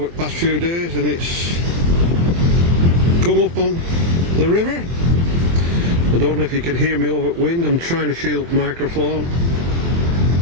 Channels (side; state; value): left; late; 23 ms